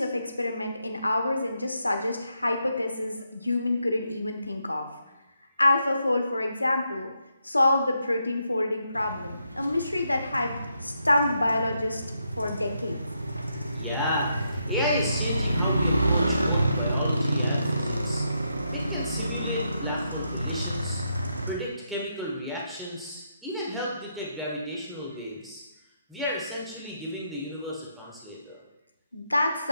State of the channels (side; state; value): both; inverted; correlation -0.80